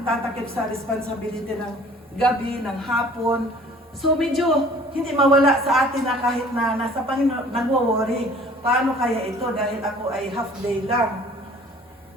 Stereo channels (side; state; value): both; normal; correlation 0.51